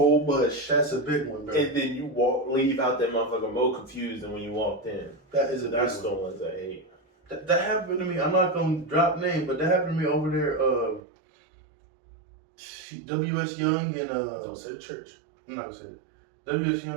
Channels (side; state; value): left; drops out; at 11.0 s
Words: bush. That's a big one, bro. And then you leave out that motherfucker more confused than when you walked in. That is a big That's one. the ones I hate. That happened to me. I'm not gonna drop name, but that happened to me over there. W.S. Young and Don't say the church. I'm not gonna say it. W.S.